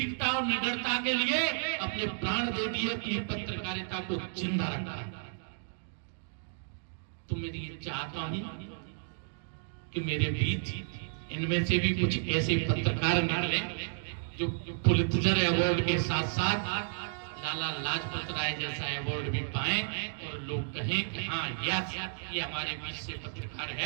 और निडरता के लिए अपने प्राण दे दिए, अपनी पत्रकारिता को जिंदा रखा। तो मैं ये चाहता हूं कि मेरे बीच इनमें से भी कुछ ऐसे पत्रकार निकले जो पुलित्जर अवार्ड के साथ साथ लाला लाजपत राय जैसा अवार्ड भी पाएं और लोग कहें कि हाँ यस ये हमारे बीच से पत्रकार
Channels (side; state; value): left; silent; digital silence